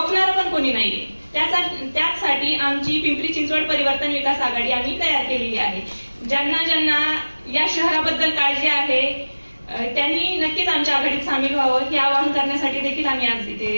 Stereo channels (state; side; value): inverted; both; correlation -1.00